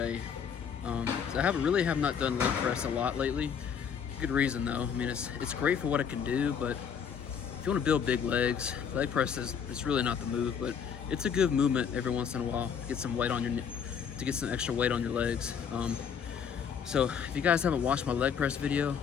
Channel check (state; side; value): quieter; right; 7.3 dB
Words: So I have not done leg press a lot lately. Good reason though. I mean, it's great for what it can do, but if you want to build big legs, leg press it's really not the move, but it's a good movement every once in a while. Get some weight on to get some extra weight on your legs. So if you guys haven't watched my leg press video,